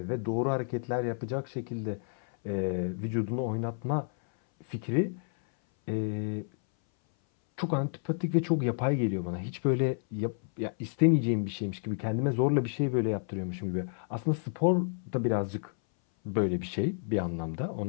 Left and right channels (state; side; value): silent; right; 58 dB below the other